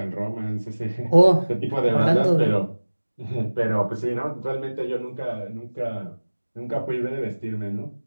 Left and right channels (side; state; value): both; inverted; correlation -1.00